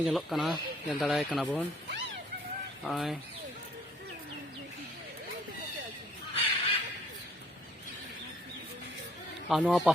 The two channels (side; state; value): both; normal; correlation 0.61